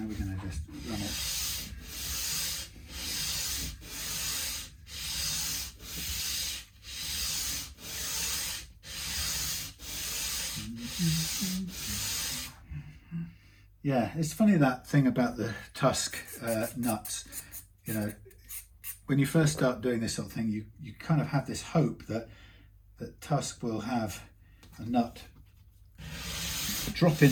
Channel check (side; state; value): both; identical; correlation 1.00